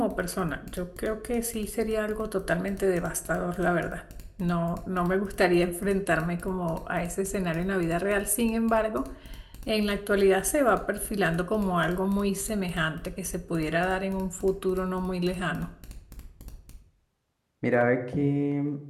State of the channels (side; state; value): both; identical; correlation 1.00